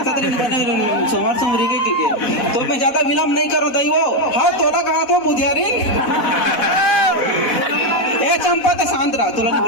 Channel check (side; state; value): right; late; 4.1 ms